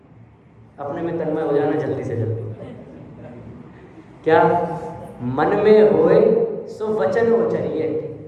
अपने में तन्मय हो जाना जल्दी से जल्दी। क्या? मन में होए सो वचन उचरिए,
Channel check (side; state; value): both; identical; correlation 1.00